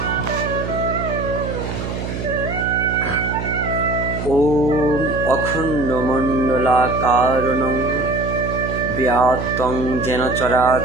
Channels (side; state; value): right; noise; hum, 5 dB below the sound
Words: ওম অখণ্ডমণ্ডলাকারণং ব্যাপ্তং যেন